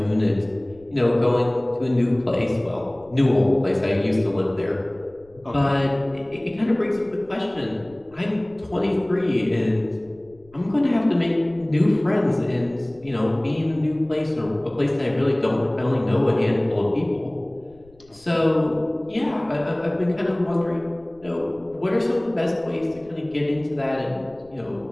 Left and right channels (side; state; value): left; noise; rumble, 28 dB below the sound